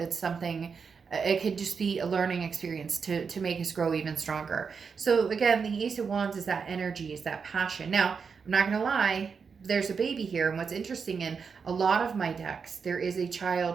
something. It could just be a learning experience to make us grow even stronger. So again, the Ace of Wands is that energy, is that passion. Now, I'm not gonna lie, there's a baby here, and what's interesting in a lot of my decks, there is a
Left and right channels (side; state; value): left; quieter; 5.7 dB